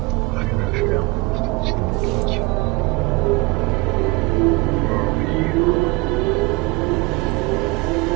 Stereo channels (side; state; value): left; quieter; 24.6 dB